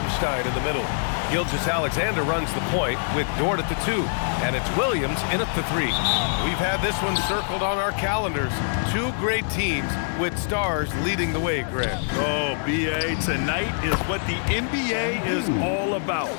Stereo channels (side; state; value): right; silent; digital silence